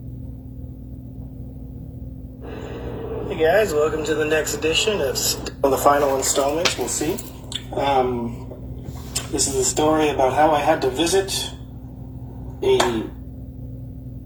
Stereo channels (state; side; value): identical; both; correlation 1.00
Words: Hey guys, welcome to the next edition of the final installment. We'll see. This is a story about how I had to visit a